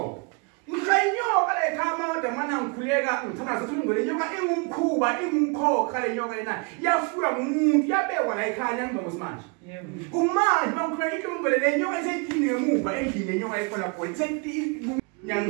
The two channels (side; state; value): left; quieter; 32.9 dB